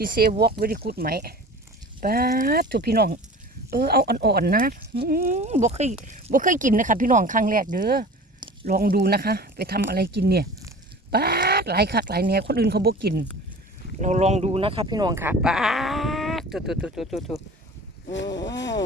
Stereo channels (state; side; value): normal; both; correlation 0.40